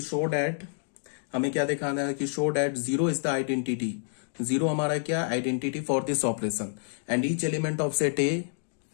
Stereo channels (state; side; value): silent; right; digital silence